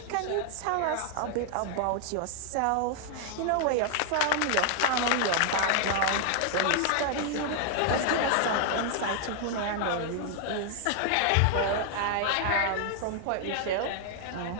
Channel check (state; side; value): different; both; correlation 0.00